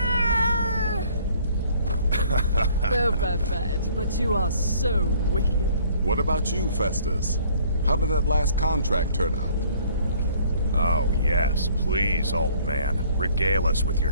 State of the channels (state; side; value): inverted; both; correlation -0.58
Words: Oh, Babette, but you are so wicked. What about you, Festus? How did that last contract turn out? Oh, yes. Please, old man. Regale us with